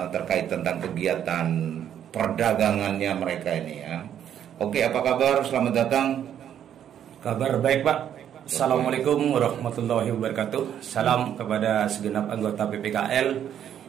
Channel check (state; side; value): quieter; left; 9.8 dB